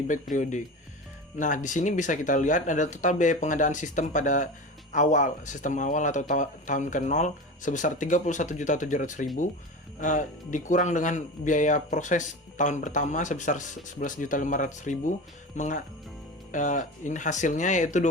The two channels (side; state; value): both; normal; correlation 0.29